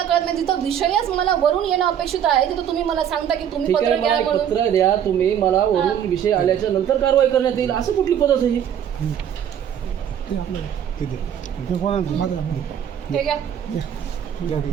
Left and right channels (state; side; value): quieter; left; 9.3 dB